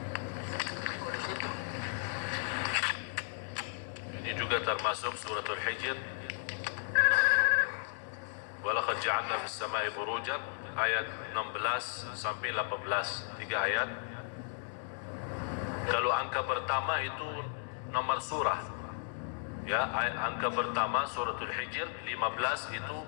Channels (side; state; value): right; silent; digital silence